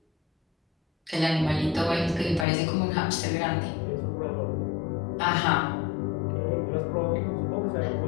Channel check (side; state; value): right; drops out; at 2.5 s